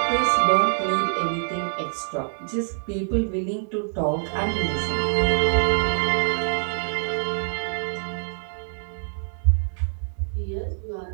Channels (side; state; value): left; silent; 60 dB below the other